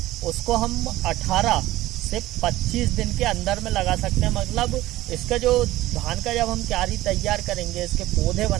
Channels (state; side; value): quieter; left; 16.5 dB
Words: उसको हम 18 से 25 दिन के अंदर में लगा सकते हैं। मतलब इसका जो धान का जब हम क्यारी तैयार करेंगे, इसके पौधे